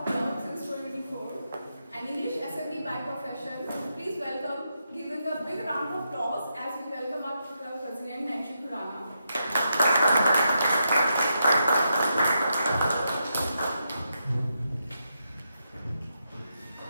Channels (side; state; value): both; inverted; correlation -0.83